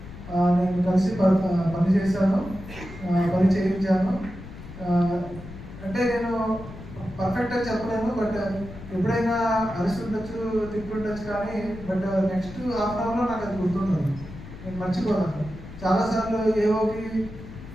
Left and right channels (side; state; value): left; noise; rumble, 14 dB below the sound